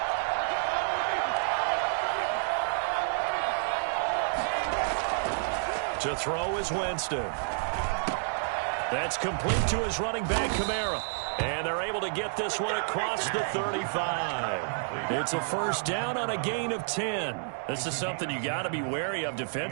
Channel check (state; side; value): silent; left; digital silence